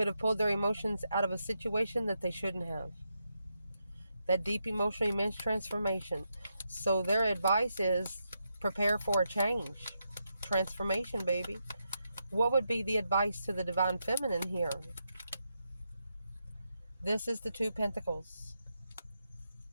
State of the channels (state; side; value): inverted; both; correlation -0.84